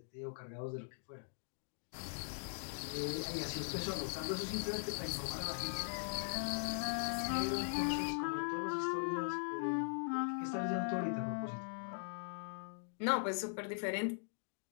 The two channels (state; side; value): silent; right; digital silence